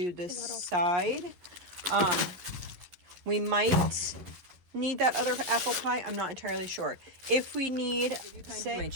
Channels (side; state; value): left; late; 11 ms